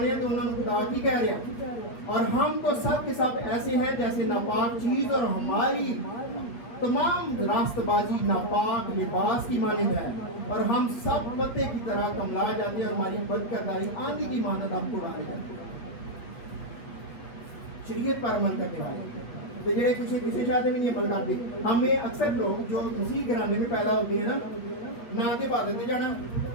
ہے تو انہوں نے خدا کی کہہ رہے ہیں. اور ہم تو سب کے سب ایسے ہیں جیسے ناپاک چیز, اور ہماری تمام راست بازی ناپاک لباس کی مانند ہے, اور ہم سب پتے کی طرح کملا جاتے ہیں, اور ہماری بد کرداری آندھی کی مانند ہم کو اڑائے جاتے ہیں. شریعت پر عمل کرنے والے تو جڑے کسی شاید بھی نہیں عمل کرتے. ہمیں اکثر لوگ جو مسیح گھرانے میں پیدا ہوتے ہیں نا, نہ تو عبادت میں جانا,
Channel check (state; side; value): late; right; 8.0 ms